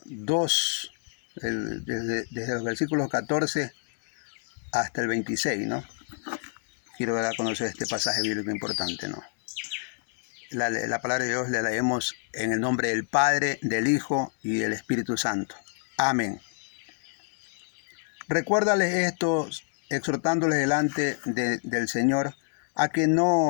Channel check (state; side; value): silent; right; digital silence